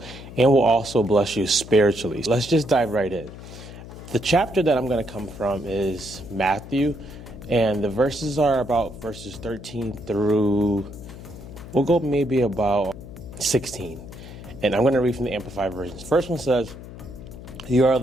and will also bless you spiritually. Let's just dive right in. The chapter that I'm going to come from is Matthew, and the verses are about verses 13 through, we'll go maybe about 16. And I'm going to read from the Amplified version. The first one says, "You are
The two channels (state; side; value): noise; left; hum, 14 dB below the sound